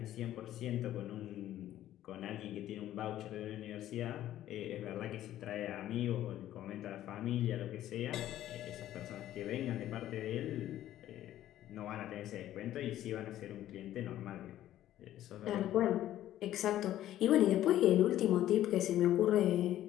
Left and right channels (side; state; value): right; quieter; 12.9 dB